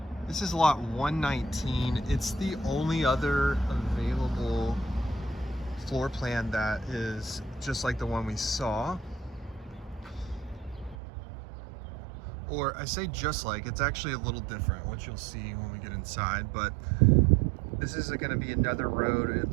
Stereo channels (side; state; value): left; drops out; at 11.0 s